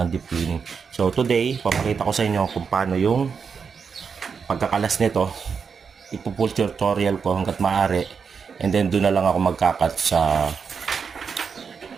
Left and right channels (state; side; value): quieter; left; 6.0 dB